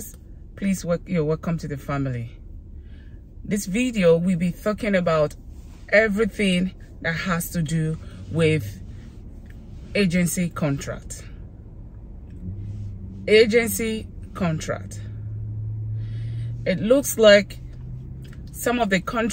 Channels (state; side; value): identical; both; correlation 1.00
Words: please you're welcome to the family. This video will be talking about everything that has to do with agency contract. Agency contract. It looks like some of the